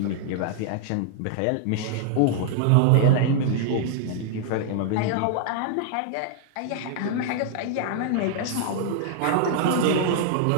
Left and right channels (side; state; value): both; different; correlation -0.01